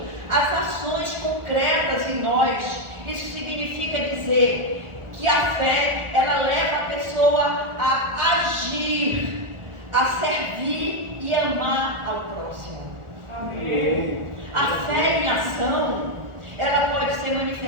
as ações concretas em nós. Isso significa dizer que a fé, ela leva a pessoa a agir, a servir e amar ao próximo. Amém. A fé em ação, ela pode ser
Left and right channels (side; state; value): left; late; 1.4 ms